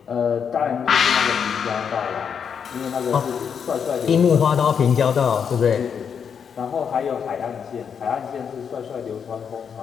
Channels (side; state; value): right; quieter; 7.1 dB